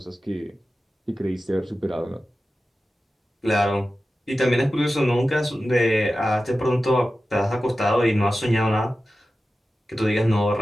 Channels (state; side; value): normal; both; correlation 0.94